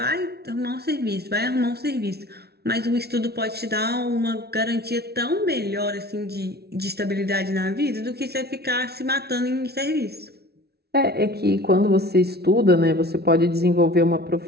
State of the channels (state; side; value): late; left; 0.47 ms